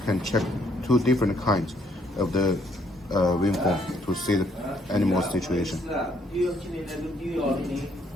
can check two different kinds of the waveform to see the animal situation.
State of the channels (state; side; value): normal; both; correlation 0.69